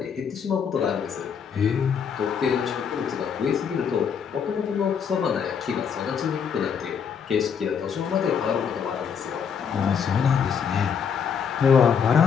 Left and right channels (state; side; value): quieter; right; 7.0 dB